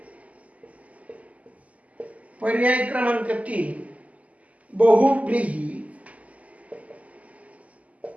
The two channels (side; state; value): left; late; 0.070 ms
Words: पर्याय क्रमांक 3 बहुव्रीही.